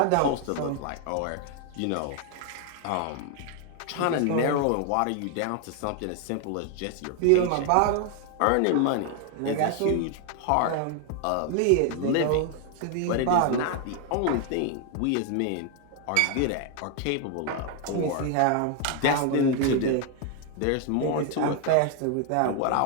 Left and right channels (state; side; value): different; both; correlation 0.01